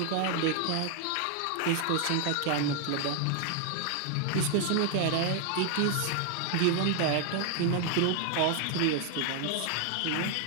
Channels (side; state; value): both; different; correlation 0.00